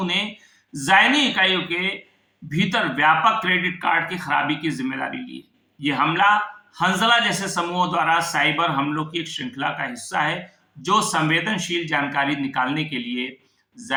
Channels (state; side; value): identical; both; correlation 1.00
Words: ने ज़ायनी इकाइयों के भीतर व्यापक क्रेडिट कार्ड की खराबी की जिम्मेदारी ली है। यह हमला हंजला जैसे समूहों द्वारा साइबर हमलों की एक श्रृंखला का हिस्सा है जो संवेदनशील जानकारी निकालने के लिए